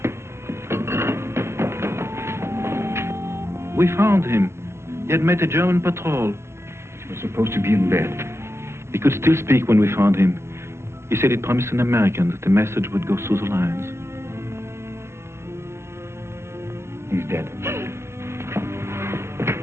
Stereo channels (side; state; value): left; late; 0.13 ms